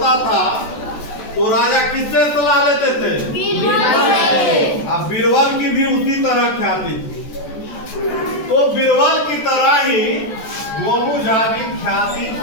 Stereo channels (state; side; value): late; right; 14 ms